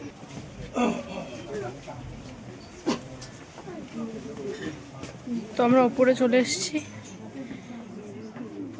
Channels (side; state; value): both; identical; correlation 1.00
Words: তো আমরা উপরে চলে এসেছি